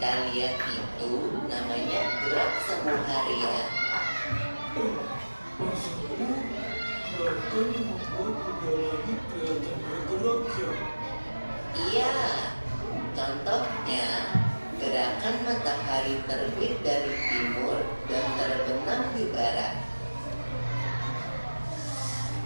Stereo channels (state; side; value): inverted; both; correlation -1.00